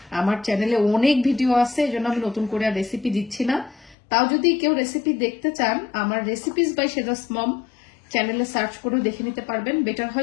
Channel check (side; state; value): right; drops out; at 4.0 s